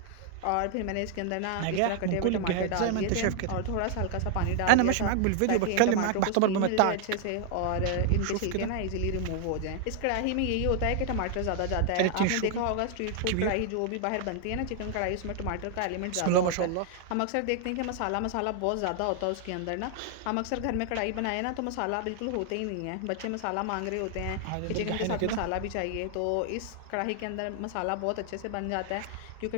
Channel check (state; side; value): different; both; correlation 0.00